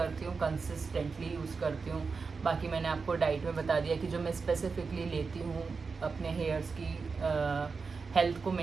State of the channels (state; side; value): quieter; left; 4.8 dB